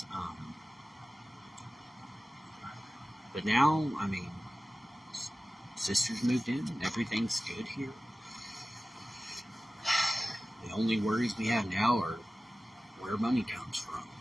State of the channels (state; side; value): normal; both; correlation 0.96